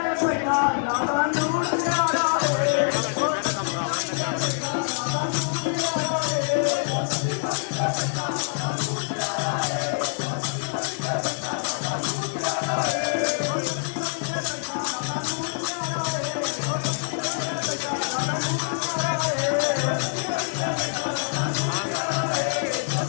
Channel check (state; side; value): silent; right; 62 dB below the other